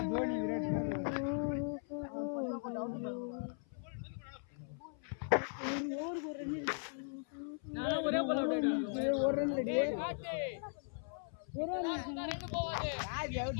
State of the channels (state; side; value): silent; right; 52 dB below the other